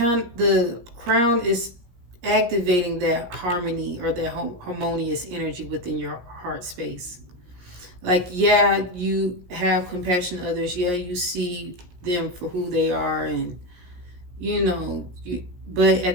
crown is activating that harmony or that harmonious energy within your heart space. Like, yeah, you have compassion to others. Yeah, you see them for who they are, and but at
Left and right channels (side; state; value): left; late; 17 ms